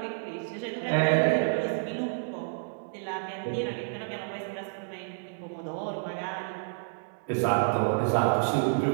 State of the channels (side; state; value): left; silent; 58 dB below the other